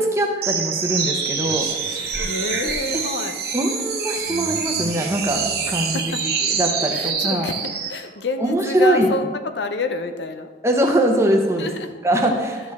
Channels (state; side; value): normal; both; correlation 0.44